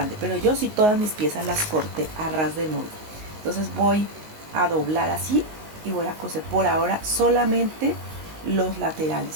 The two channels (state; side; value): late; left; 19 ms